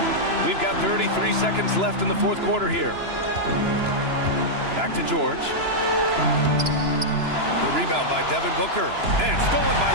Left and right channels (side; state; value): left; late; 2.9 ms